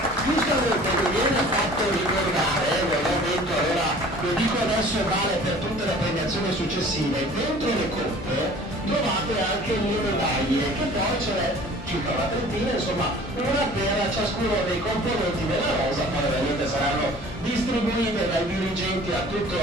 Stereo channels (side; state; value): both; normal; correlation 0.47